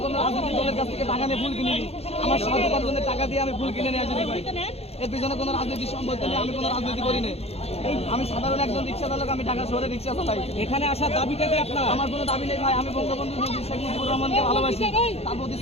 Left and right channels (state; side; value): late; right; 0.30 ms